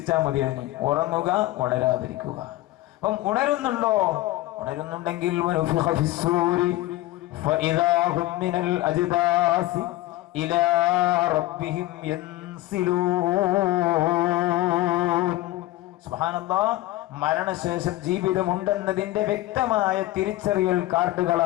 മതിയാണ്. ഉറങ്ങുക, ഉണരാതിരിക്കുക. അപ്പം ഉണരുന്നുണ്ടോ? ഉണരുന്നുണ്ടെങ്കിൽ സുബ്ഹാനല്ലാഹ്. മരണശേഷം ജീവിതമുണ്ടെന്നതിന്റെ വ്യക്തമായ തിരിച്ചറിയൽ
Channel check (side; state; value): right; quieter; 16.7 dB